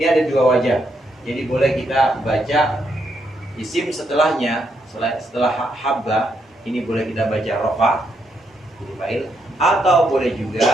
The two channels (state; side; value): normal; both; correlation 0.78